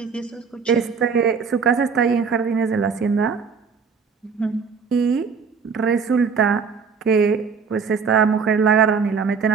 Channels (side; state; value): left; quieter; 5.7 dB